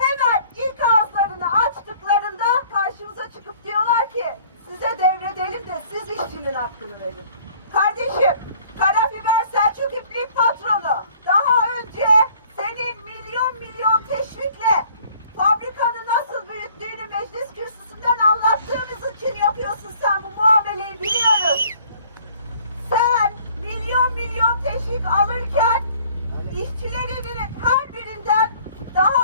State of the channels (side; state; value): both; inverted; correlation -0.55